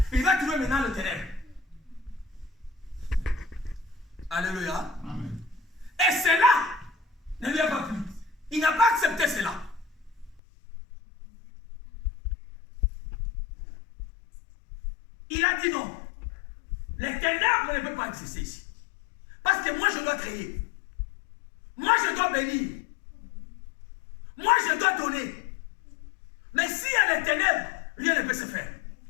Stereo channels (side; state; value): right; drops out; at 10.4 s